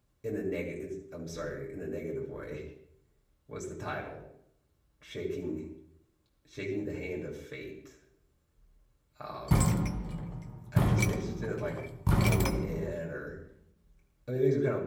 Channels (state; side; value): identical; both; correlation 1.00